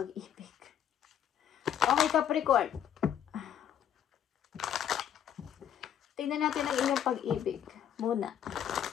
Okay, Capricorn. Tingnan natin ang inyong pag-ibig muna.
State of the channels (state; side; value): quieter; right; 9.5 dB